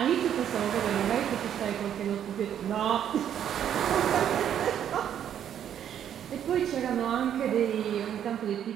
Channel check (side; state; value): left; quieter; 9.7 dB